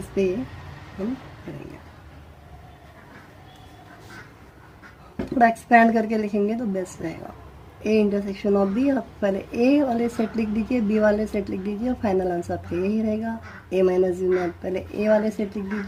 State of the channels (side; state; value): both; identical; correlation 1.00